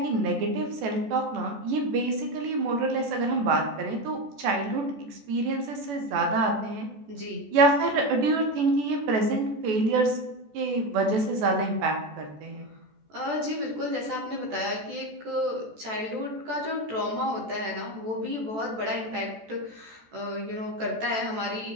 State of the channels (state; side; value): late; left; 14 ms